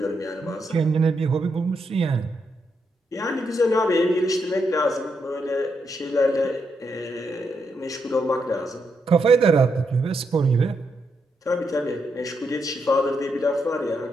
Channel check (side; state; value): both; normal; correlation 0.81